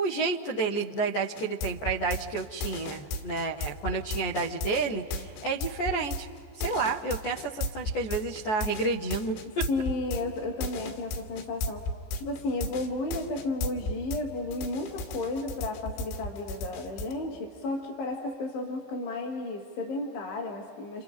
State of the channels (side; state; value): right; late; 14 ms